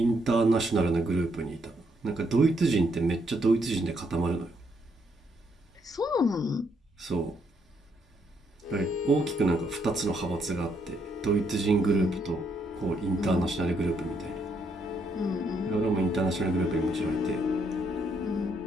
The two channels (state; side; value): normal; both; correlation 0.74